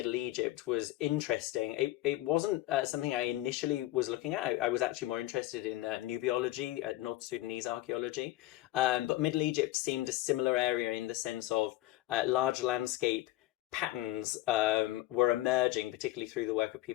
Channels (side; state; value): right; quieter; 16.7 dB